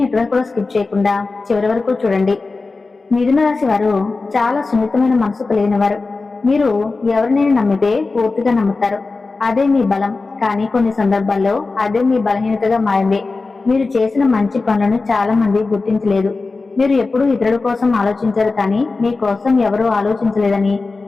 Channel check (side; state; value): right; quieter; 3.8 dB